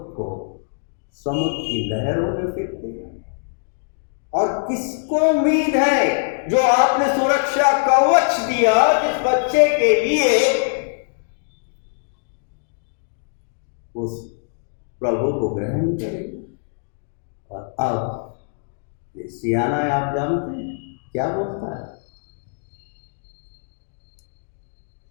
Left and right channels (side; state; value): right; silent; digital silence